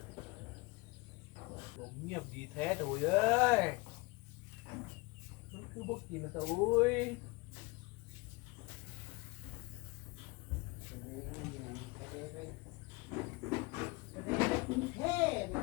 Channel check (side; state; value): right; quieter; 25.4 dB